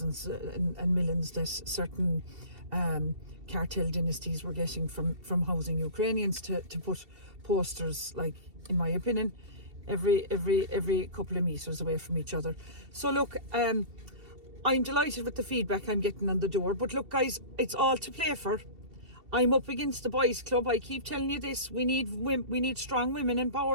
and millions that certain cartel dynasties were getting from housing Ukrainians to put posters, like, in my opinion, every couple of meters away from each other. So look, I'm delighted with the feedback I'm getting on the door. But look, guys, it's all to play for. I'm up against the boys' club. I keep telling you this. We need strong women in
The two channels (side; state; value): left; late; 2.7 ms